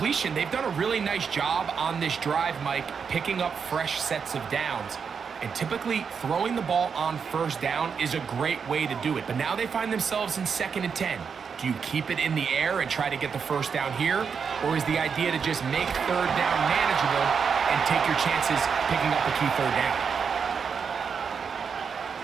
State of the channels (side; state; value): left; quieter; 6.3 dB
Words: they've done a really nice job on this drive, Mike, picking up fresh sets of downs. And typically, throwing the ball on 1st down is a great way to do it. But now they find themselves in 2nd and 10. Do you keep it in the air and try to get the 1st down here? Or is the idea to just make 3rd down manageable and take your chances picking up a key 3rd down?